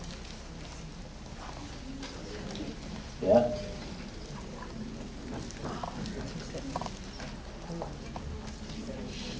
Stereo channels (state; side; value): identical; both; correlation 1.00